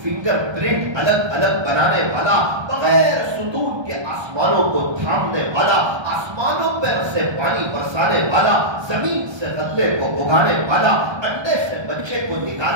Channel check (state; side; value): late; left; 1.2 ms